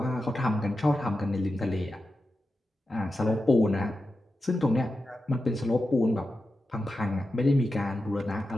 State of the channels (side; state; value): both; normal; correlation 0.91